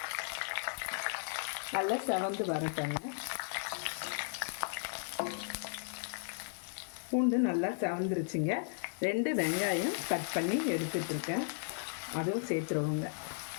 நல்லா செவந்து வரட்டங்க. பூண்டு நல்லா செவந்துருச்சுங்க. 2 வெங்காயம் கட் பண்ணி எடுத்துகிட்ருக்கேன், அதுவும் சேர்த்துருவோங்க.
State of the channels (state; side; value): silent; right; 54 dB below the other